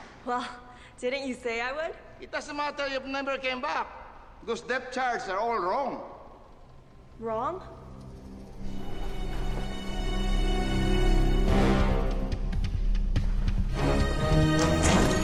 Well, didn't you say I would? It doesn't matter if you never came back, because depth charts are all wrong. Wrong?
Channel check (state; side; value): identical; both; correlation 1.00